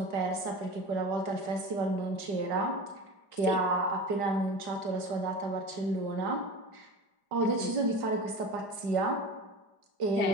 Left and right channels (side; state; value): left; late; 5.0 ms